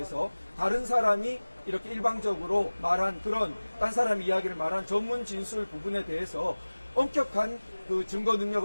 다른 사람이 이렇게 일방적으로 말한 그런 딴 사람 이야기를 말한 전문 진술 부분에 대해서 엄격한 증거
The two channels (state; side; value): inverted; both; correlation -1.00